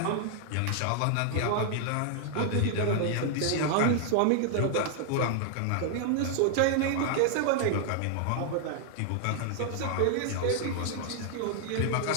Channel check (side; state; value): both; different; correlation 0.00